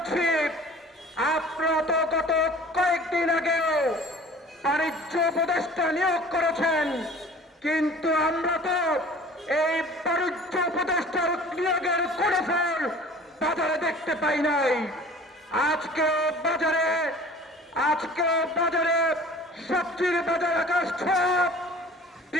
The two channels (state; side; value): normal; both; correlation 0.46